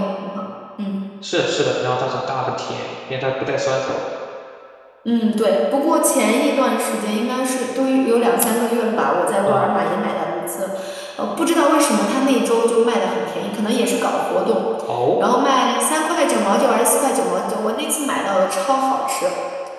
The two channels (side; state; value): both; identical; correlation 1.00